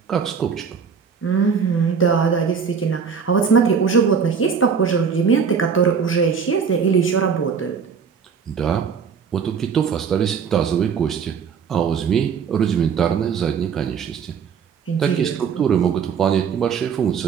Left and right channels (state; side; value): quieter; left; 6.4 dB